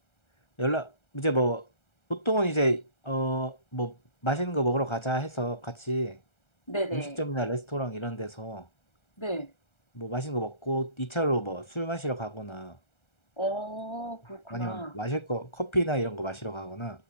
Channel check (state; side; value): late; right; 1.3 ms